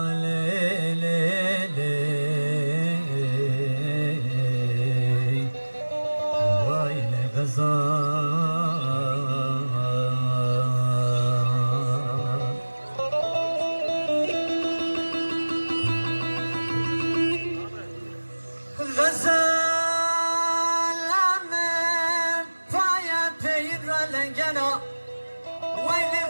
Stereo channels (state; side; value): inverted; both; correlation -1.00